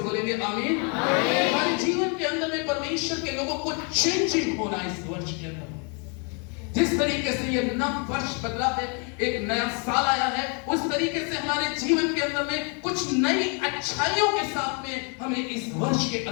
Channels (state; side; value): quieter; right; 37.1 dB